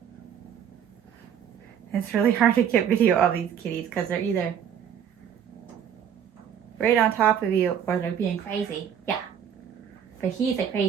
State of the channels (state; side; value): quieter; left; 8.6 dB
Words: It's really hard to get video of these kitties because they're either right on top of you or they're being crazy. Yeah. But he's the